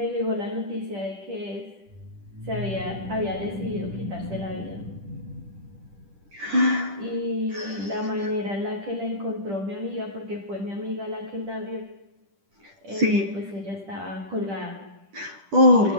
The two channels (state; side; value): late; left; 10 ms